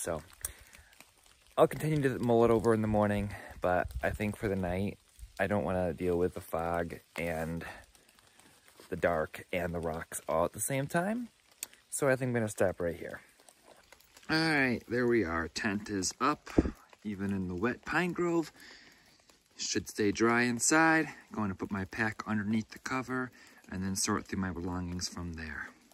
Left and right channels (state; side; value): identical; both; correlation 1.00